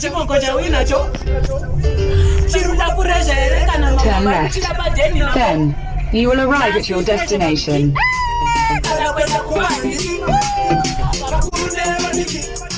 cha winacho. Chiruda kurejere kana mama. Then you will arrive at your destination.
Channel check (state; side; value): identical; both; correlation 1.00